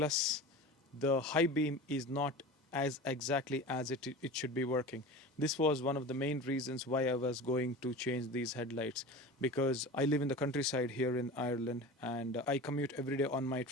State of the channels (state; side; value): normal; both; correlation 0.33